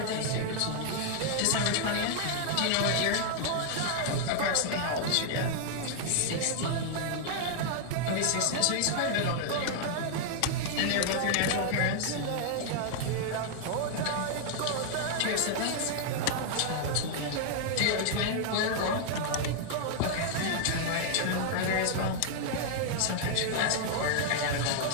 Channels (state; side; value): different; both; correlation 0.00